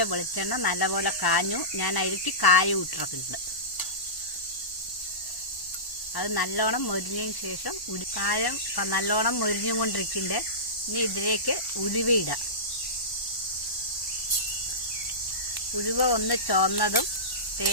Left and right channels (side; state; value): right; late; 1.0 ms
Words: വെളിച്ചെണ്ണ നല്ലപോലെ കാഞ്ഞു. ഞാൻ അതിലേക്ക് കായം ഇട്ടിട്ടുണ്ട്. അത് നല്ലോണം മൊരിഞ്ഞതിന് ശേഷം കായം നല്ലോണം മൊരിഞ്ഞും കൊണ്ടിരിക്കുന്നുണ്ട്. ഇനി ഇതിലേക്ക് ഉലുവയിടാം. ഉലുവ ഒന്ന് ചുവന്നതും